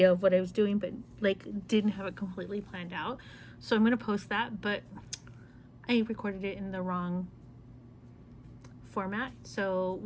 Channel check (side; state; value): both; identical; correlation 1.00